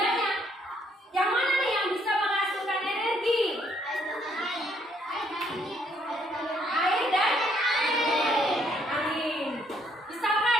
Yang mana nih yang bisa menghasilkan energi? Air dan angin.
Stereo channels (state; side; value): normal; both; correlation 0.69